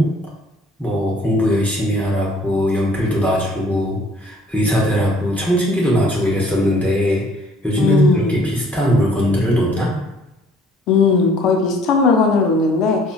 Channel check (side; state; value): both; normal; correlation 0.57